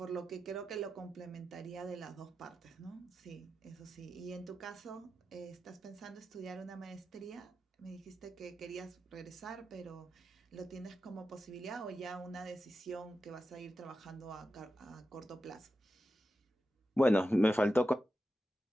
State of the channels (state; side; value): normal; both; correlation 0.90